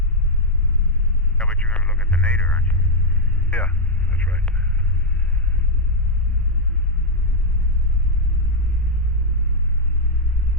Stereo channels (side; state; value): both; normal; correlation 0.00